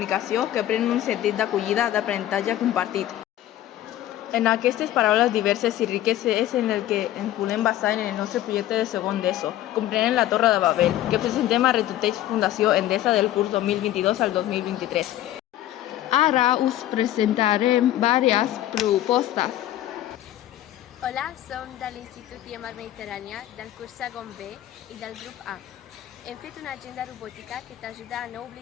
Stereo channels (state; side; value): quieter; right; 13.3 dB